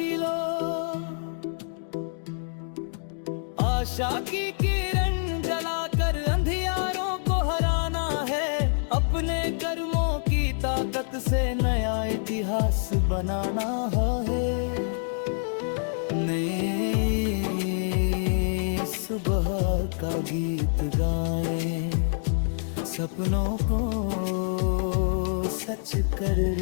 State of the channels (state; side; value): silent; right; digital silence